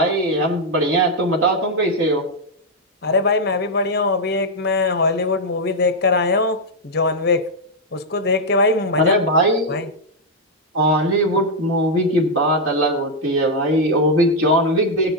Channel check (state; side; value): normal; both; correlation -0.01